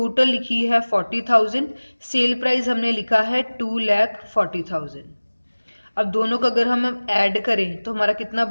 लिखी है 40,000, सेल प्राइस हमने लिखा है 2,40,000। अब दोनों का अगर हम ऐड करें तो हमारा कितना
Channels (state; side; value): inverted; both; correlation -1.00